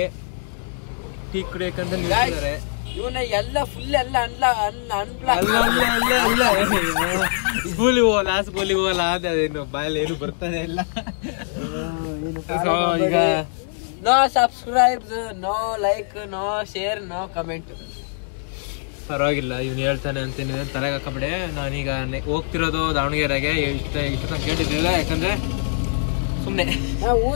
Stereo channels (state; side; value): silent; right; 62 dB below the other